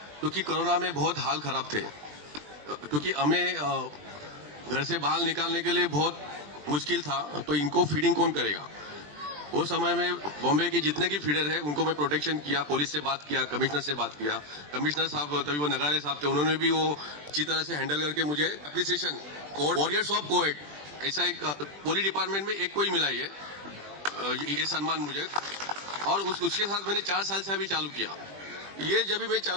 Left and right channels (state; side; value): late; left; 20 ms